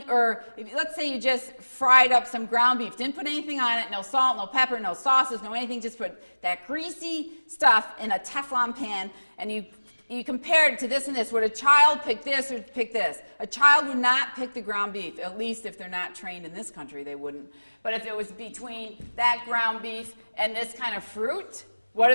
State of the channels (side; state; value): both; inverted; correlation -1.00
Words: Or let's say you just fried up some ground beef, didn't put anything on it, no salt, no pepper, no sauces, no anything, just put that greasy stuff in a Teflon pan, and you compared it to this and this. Would a child pick this or pick this? A child would not pick the ground beef, at least if they're not trained in this country, they wouldn't. But if it was between that ground beef and this kind of fruit, what